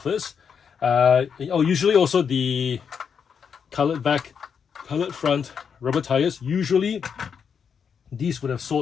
Usually also the colored back, colored front, rubber tires. Usually these would have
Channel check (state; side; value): quieter; right; 6.8 dB